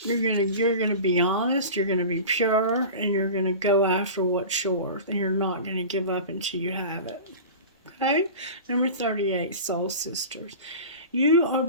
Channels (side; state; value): both; inverted; correlation -0.34